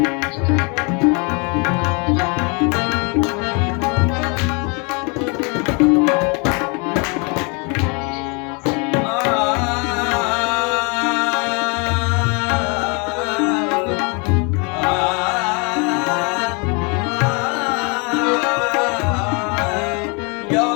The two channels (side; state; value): right; quieter; 32.5 dB